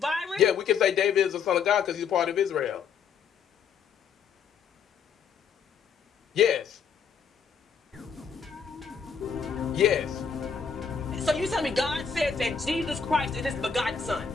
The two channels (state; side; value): quieter; right; 6.4 dB